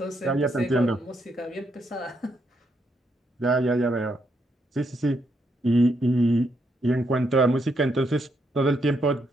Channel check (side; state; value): both; normal; correlation 0.77